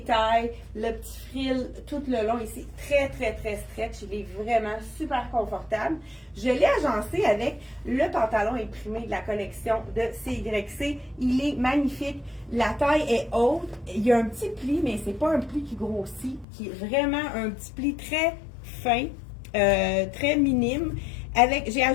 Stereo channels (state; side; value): drops out; right; at 16.4 s